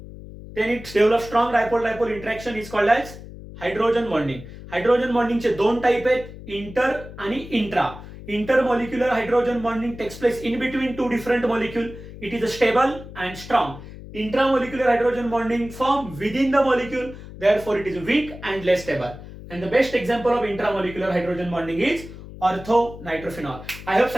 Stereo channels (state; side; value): noise; left; hum, 14 dB below the sound